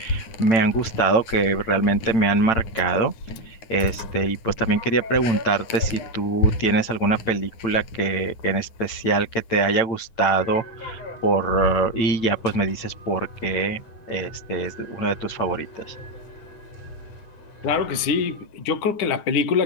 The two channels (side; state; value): right; late; 8.9 ms